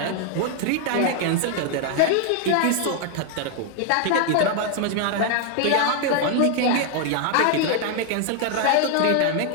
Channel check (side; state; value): both; different; correlation 0.00